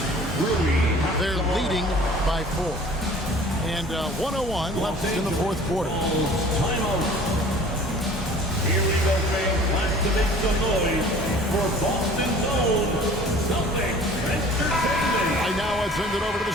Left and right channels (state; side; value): normal; both; correlation 0.48